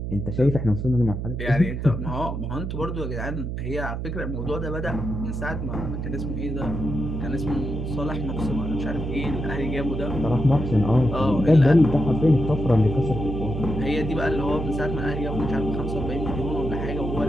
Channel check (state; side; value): noise; right; hum, 4 dB below the sound